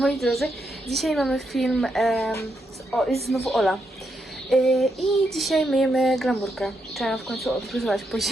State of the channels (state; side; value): normal; both; correlation 0.81